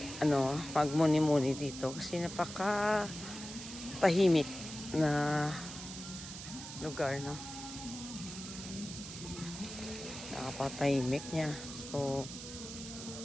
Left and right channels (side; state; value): right; noise; hiss, 10 dB below the sound